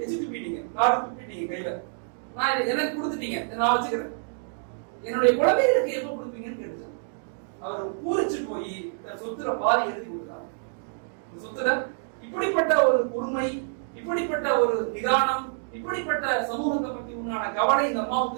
எச்சி துப்பிட்டீங்க, காடு துப்பிட்டீங்க கையில, நான் எனக்கு கொடுத்துட்டீங்க, நான் வச்சுக்கிறேன், என்னுடைய குழந்தைகளுக்கு எப்ப கொடுப்பீங்கன்னு கேட்டுச்சு. அவர் பூரிச்சு போய் சொத்துல பாதி எழுதி கொடுத்தார். சொத்துல இப்படிப்பட்ட ஒரு பொறுமை, இப்படிப்பட்ட ஒரு நிதானம், இப்படிப்பட்ட சமூகத்தை பத்தி உண்டான கவலை இந்த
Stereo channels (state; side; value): silent; left; digital silence